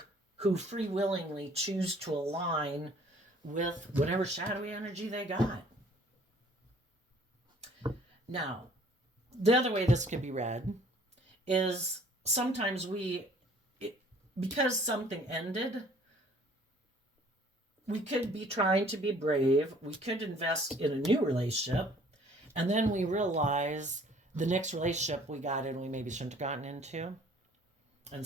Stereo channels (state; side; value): normal; both; correlation 0.55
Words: who free willingly choose to align with whatever shadowy energy they got. Now, the other way this can be read is sometimes because something ended, we could be trying to be brave. We could invest in a new relationship. And then we realize the next relationship we got in, we maybe shouldn't have gotten into. And